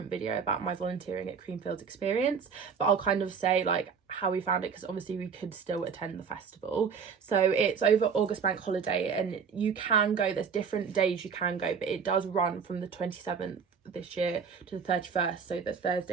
video about my volunteering at Creamfields experience. But I'll kind of say like how we found it, because obviously we could still attend the festival. So it's over August bank holiday, and you can go, there's different days you can go, but it does run from the 27th this year to the 31st, so the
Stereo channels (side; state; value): left; quieter; 6.3 dB